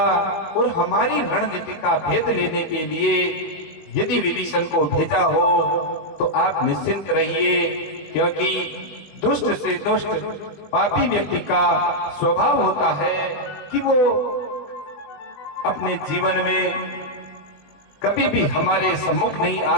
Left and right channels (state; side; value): late; right; 21 ms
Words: और हमारी रणनीति का भेद लेने के लिए यदि विभीषण को भेजा हो तो आप निश्चिंत रहिए, क्योंकि दुष्ट से दुष्ट पापी व्यक्ति का स्वभाव होता है कि वो अपने जीवन में कभी भी हमारे सम्मुख नहीं आ